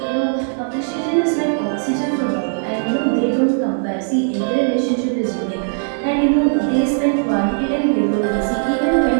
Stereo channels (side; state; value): left; silent; digital silence